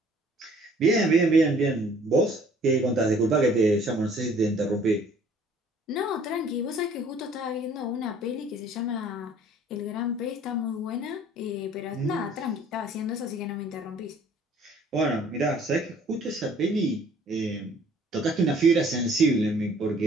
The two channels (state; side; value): normal; both; correlation 0.55